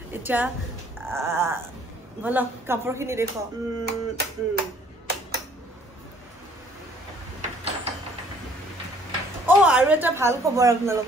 এতিয়া ব'লক কাপোৰখিনি দেখুৱাওঁ আৰু এটা ভাল খবৰ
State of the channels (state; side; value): normal; both; correlation 0.59